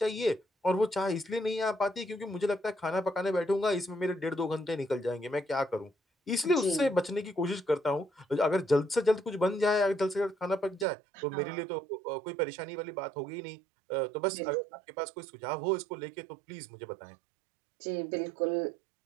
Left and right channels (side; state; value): left; drops out; at 10.9 s